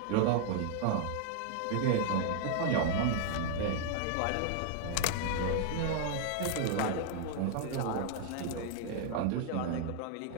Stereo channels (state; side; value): different; both; correlation 0.00